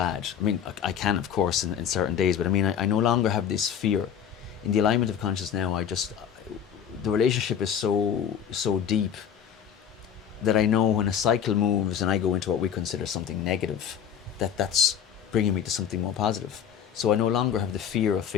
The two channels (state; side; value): quieter; right; 8.5 dB